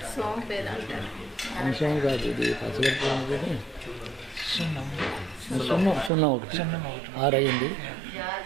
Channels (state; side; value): drops out; left; at 6.1 s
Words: అంశం కాదు ఇది పచ్చకర్పూరం కానీ సున్నం ఒకటి 6 అయింది.